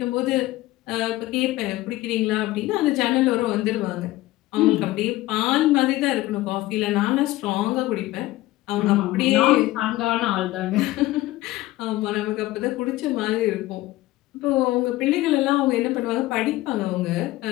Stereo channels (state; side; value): quieter; right; 17.4 dB